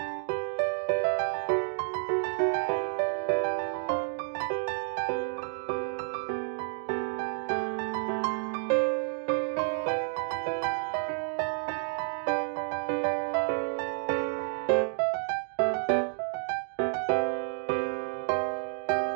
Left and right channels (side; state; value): left; silent; digital silence